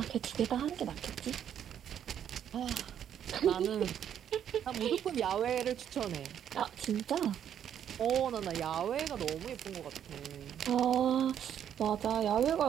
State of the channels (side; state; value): left; quieter; 9.4 dB